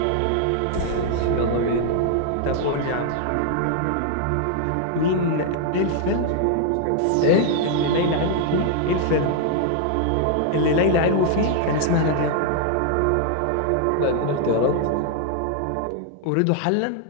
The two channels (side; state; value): both; different; correlation 0.00